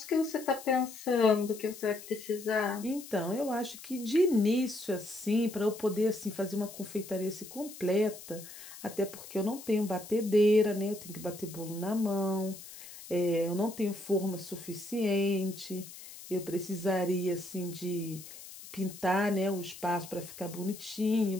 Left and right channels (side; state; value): left; noise; hiss, 15 dB below the sound